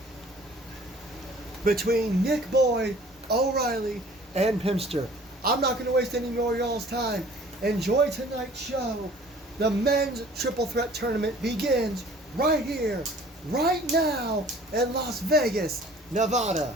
between Nick Boyd, O'Reilly, and Pimster. I'm not going to waste any more of y'all's time. Enjoy tonight's show. The men's triple threat tournament begins right here, right now in Las Vegas, Nevada.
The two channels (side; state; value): both; normal; correlation 0.51